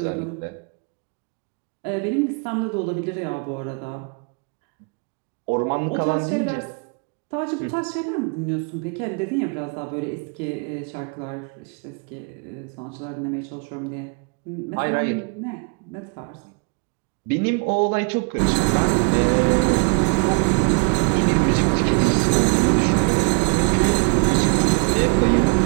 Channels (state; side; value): quieter; left; 31.2 dB